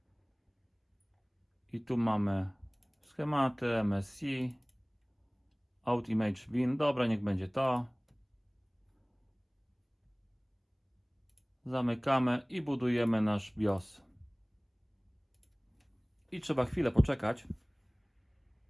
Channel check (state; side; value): identical; both; correlation 1.00